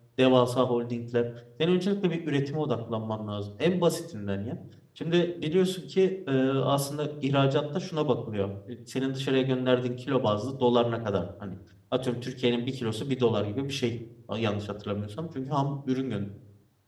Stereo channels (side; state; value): both; identical; correlation 1.00